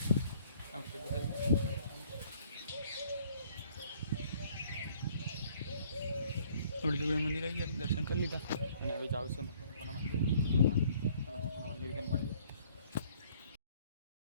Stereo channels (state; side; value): inverted; both; correlation -0.60